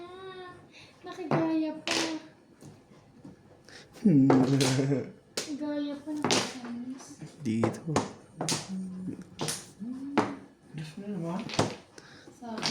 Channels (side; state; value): both; identical; correlation 1.00